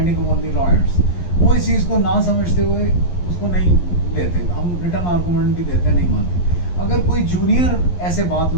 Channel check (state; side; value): late; right; 11 ms